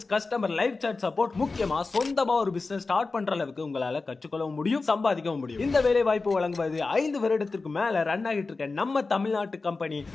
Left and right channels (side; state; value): right; quieter; 3.9 dB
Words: customer live chat support, முக்கியமா சொந்தமா ஒரு பிசினஸ் ஸ்டார்ட் பண்ற அளவுக்கு உங்களால கற்றுக்கொள்ளவும் முடியும், சம்பாதிக்கவும் முடியும். இந்த வேலை வாய்ப்பு வழங்குவது 5 வருடத்திற்கு மேல ரன் ஆகிட்டு இருக்க நம்ம தமிழ்நாட்டு company